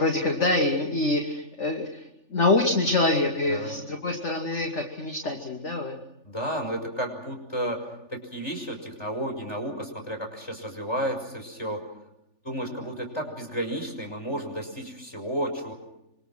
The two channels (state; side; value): late; right; 3.4 ms